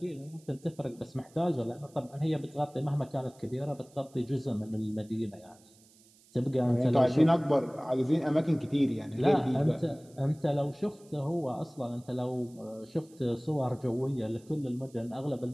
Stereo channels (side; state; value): right; noise; hiss, 28 dB below the sound